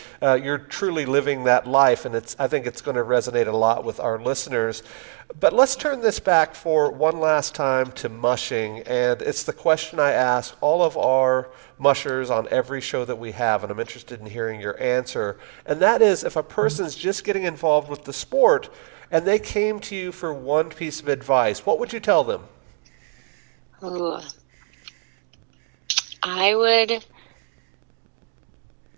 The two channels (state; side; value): silent; left; 57 dB below the other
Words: You're truly living that life, and I think it's going to resonate a lot with our listeners. But let's turn this back for one last time to mushing, and it's the question I ask all of our mushers on every show that we have, and I'm interested in hearing your answer. And that is, if a person's just getting involved with the sport and they came to you for one piece of advice, what would you tell them? Ooh. I would